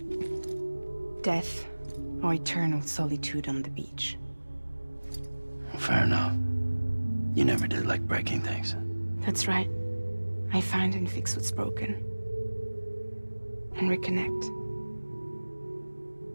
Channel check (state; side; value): inverted; both; correlation -1.00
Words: Death or eternal solitude on the beach. Fair enough. You never did like breaking things. That's right. I find and fix what's broken. And reconnect.